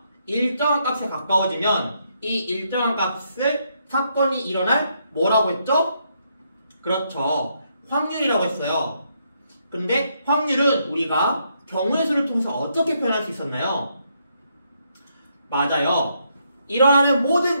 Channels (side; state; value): both; inverted; correlation -0.76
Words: 일정한 값에 가까워지면 이 일정한 값을 사건이 일어날 뭐라고 했죠? 그렇죠. 확률이라고 했어요. 근데 확률은 우리가 경우의 수를 통해서 어떻게 표현할 수 있었나요? 맞아요. 일어나는 모든